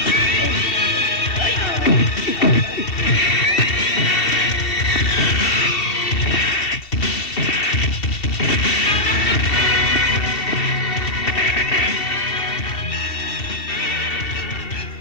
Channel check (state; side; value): late; right; 2.7 ms